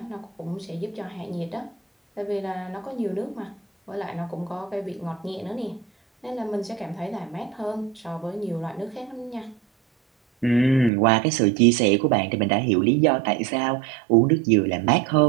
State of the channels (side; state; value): left; drops out; at 10.9 s